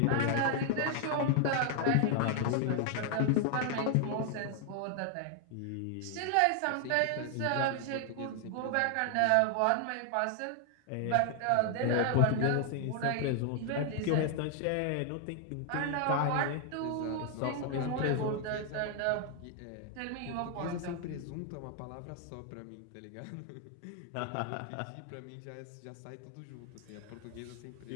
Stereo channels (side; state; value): both; different; correlation 0.00